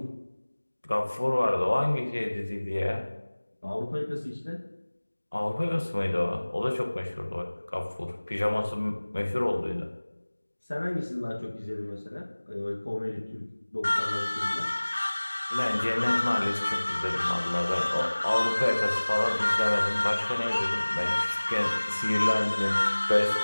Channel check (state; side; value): inverted; both; correlation -1.00